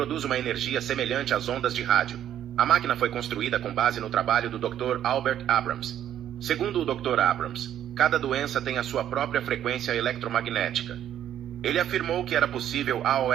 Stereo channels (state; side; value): quieter; left; 10.7 dB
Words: uma energia semelhante às ondas de rádio. A máquina foi construída com base no trabalho do Dr. Albert Abrams. Segundo o Dr. Abrams, cada doença tem a sua própria frequência eletromagnética. Ele afirmou que era possível